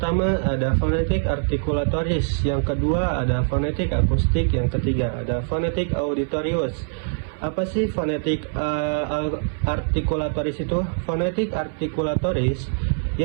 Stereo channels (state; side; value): silent; left; 59 dB below the other